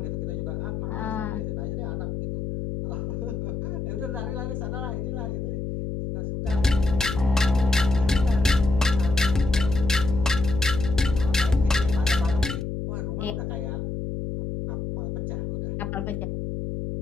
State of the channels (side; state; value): left; noise; hum, 4 dB below the sound